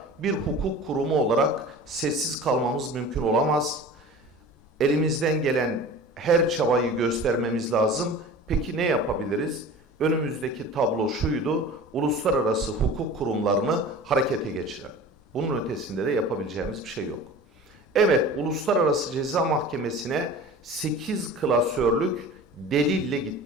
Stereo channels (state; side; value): normal; both; correlation 0.39